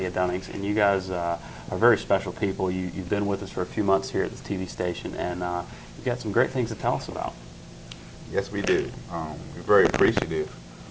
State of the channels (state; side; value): identical; both; correlation 1.00